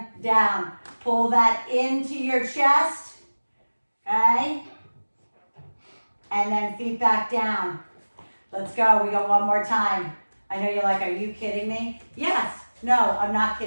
down. Pull that into your chest. Okay. And then feet back down. Let's go. We go one more time. I know you're like, are you kidding me? Yes. No, I'm not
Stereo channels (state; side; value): inverted; both; correlation -1.00